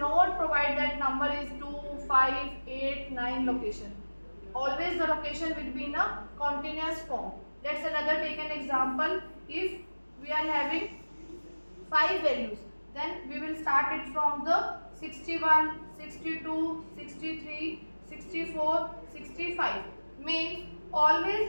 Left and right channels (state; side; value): inverted; both; correlation -1.00